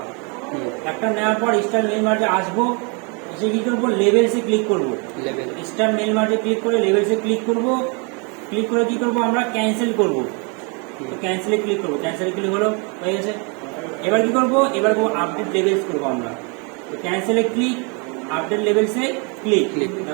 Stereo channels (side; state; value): left; quieter; 34.0 dB